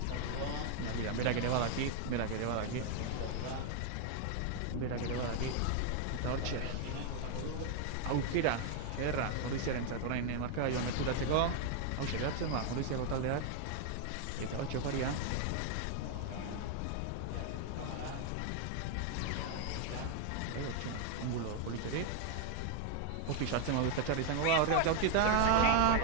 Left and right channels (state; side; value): different; both; correlation 0.00